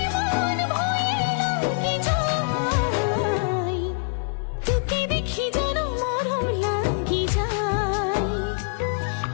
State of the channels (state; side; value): silent; right; digital silence